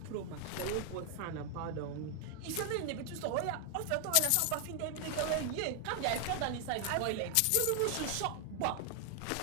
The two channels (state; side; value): different; both; correlation 0.00